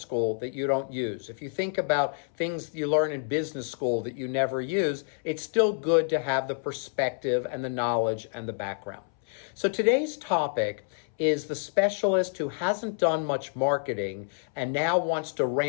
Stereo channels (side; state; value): right; silent; 59 dB below the other